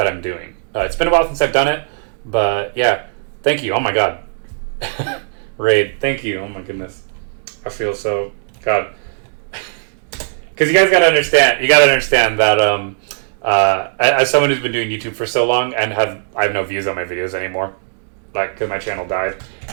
I'm doing. It's been a while since I've done it, but yeah, thank you. Oh my god, Raid, thank you. Oh my goodness. I feel so... God. Because you guys gotta understand. You gotta understand that as someone who's been doing YouTube for so long and I have no views on my videos anymore, like because my channel died.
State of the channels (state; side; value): silent; left; digital silence